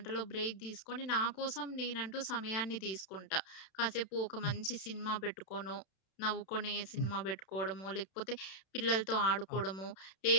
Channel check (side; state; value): right; late; 32 ms